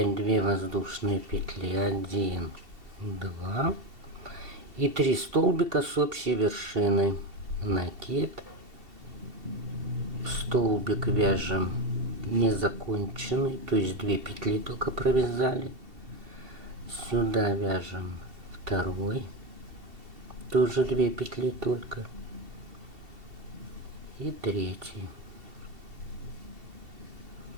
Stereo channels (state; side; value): late; left; 2.7 ms